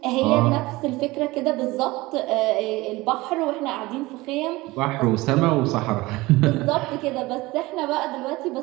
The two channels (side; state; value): left; quieter; 20.7 dB